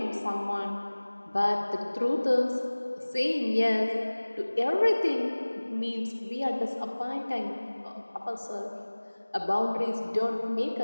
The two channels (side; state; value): both; inverted; correlation -1.00